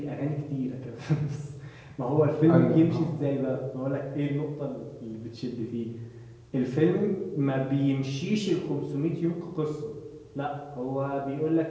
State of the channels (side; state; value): both; identical; correlation 1.00